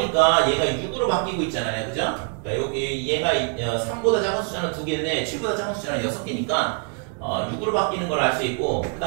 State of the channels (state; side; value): quieter; left; 39.1 dB